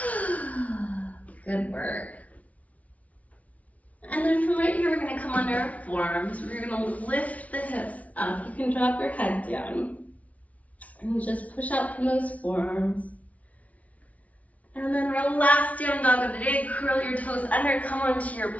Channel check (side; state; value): right; late; 0.068 ms